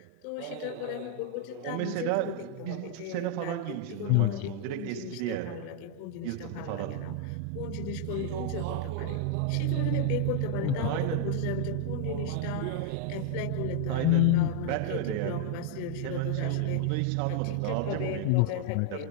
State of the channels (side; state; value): both; different; correlation 0.00